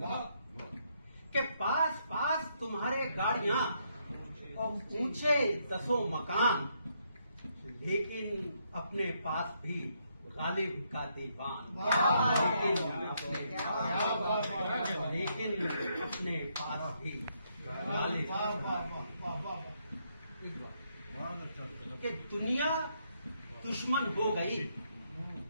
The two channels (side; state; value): both; inverted; correlation -0.75